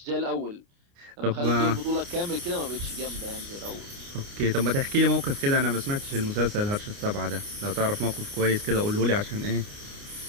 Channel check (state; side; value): late; left; 29 ms